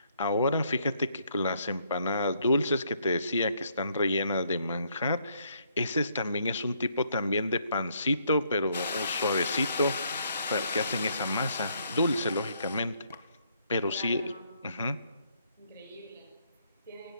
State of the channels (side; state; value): both; inverted; correlation -0.70